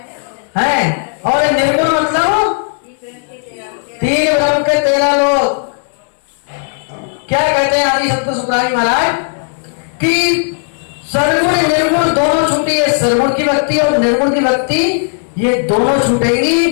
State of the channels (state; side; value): silent; right; digital silence